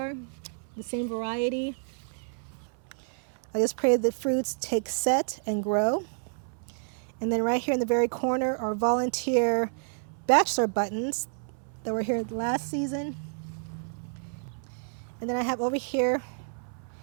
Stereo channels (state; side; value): silent; left; 58 dB below the other